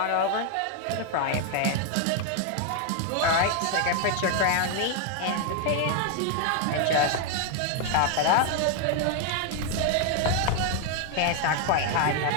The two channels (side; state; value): both; different; correlation 0.01